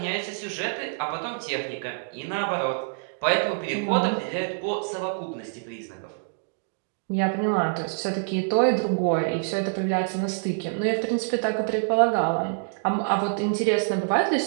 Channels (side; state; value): left; silent; digital silence